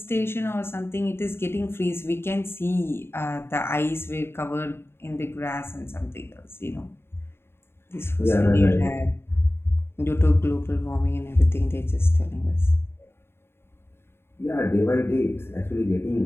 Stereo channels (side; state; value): right; late; 0.11 ms